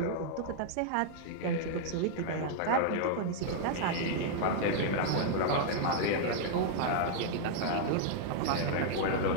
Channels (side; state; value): both; different; correlation -0.01